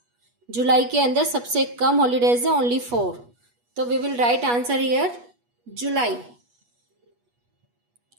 जुलाई के अंदर सबसे कम हॉलीडेज है, ओनली 4। तो we will write answer here July,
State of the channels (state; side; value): late; left; 8.3 ms